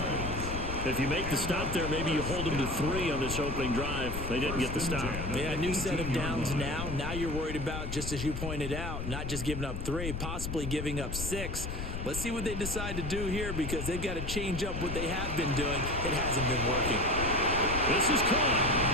If you make the stop there, maybe you hold them to 3 on this opening drive. They didn't get the stop. Yeah, new set of downs now. Now you're worried about, just as you pointed out, not just giving up 3, possibly giving up 6. Let's see what they decide to do here because they've got to change up what they have been doing. It hasn't been working. This is caught.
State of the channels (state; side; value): noise; left; rumble, 5 dB below the sound